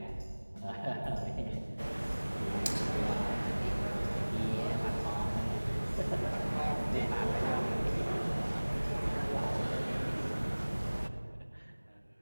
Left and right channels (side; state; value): both; inverted; correlation -1.00